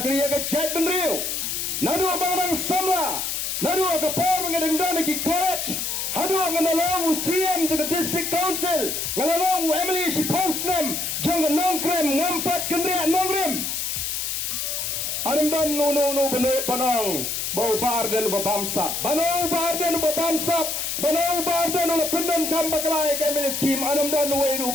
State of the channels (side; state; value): left; noise; hiss, 2 dB below the sound